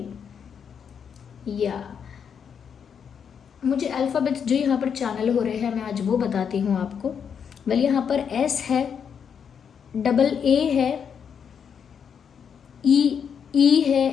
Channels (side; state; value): right; quieter; 7.3 dB